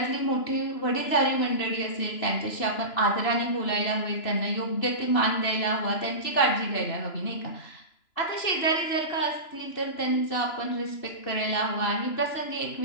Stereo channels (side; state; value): right; late; 2.9 ms